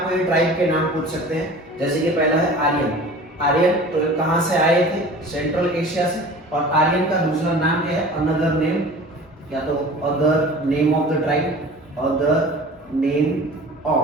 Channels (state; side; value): normal; both; correlation 0.41